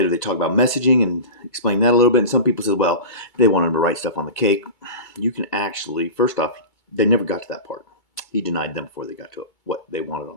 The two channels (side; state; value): right; late; 2.3 ms